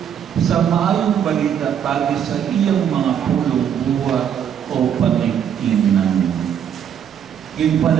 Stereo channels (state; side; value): quieter; left; 8.8 dB